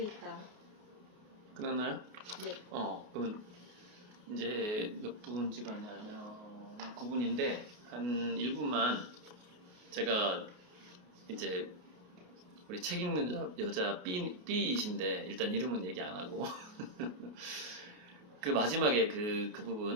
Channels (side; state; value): left; late; 28 ms